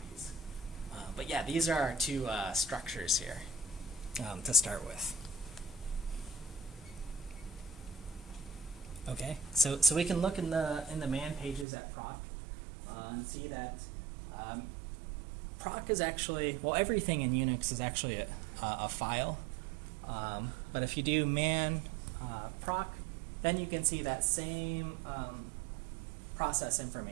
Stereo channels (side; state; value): left; drops out; at 11.7 s